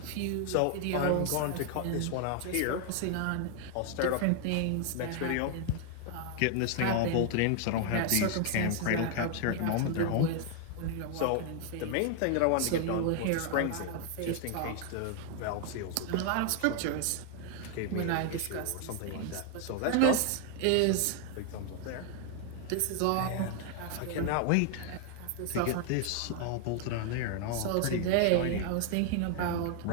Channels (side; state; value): both; different; correlation 0.00